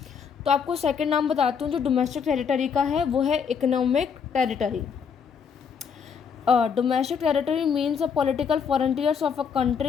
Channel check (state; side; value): quieter; right; 6.6 dB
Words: तो आपको सेकंड नाम बताती हूँ जो डोमेस्टिक टेरिटरी का है, वो है economic territory. Domestic territory means the political frontiers of a